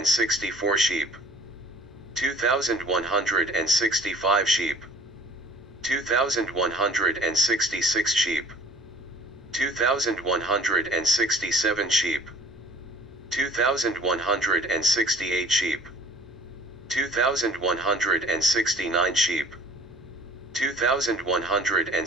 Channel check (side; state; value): both; normal; correlation 0.49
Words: sheep, 2,165 sheep, 2,166 sheep, 2,167 sheep, 2,168 sheep, 2,169 sheep,